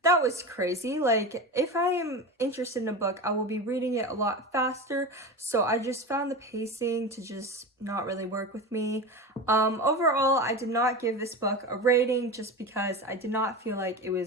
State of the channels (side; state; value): both; normal; correlation 0.25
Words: that was crazy. If I am interested in a book, I will be reading it a lot faster. So I just found the pacing to just not really work with me. Overall, I did not give this book a rating, just because I did not feel like it